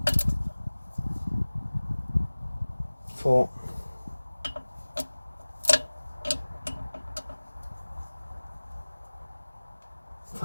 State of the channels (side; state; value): both; inverted; correlation -1.00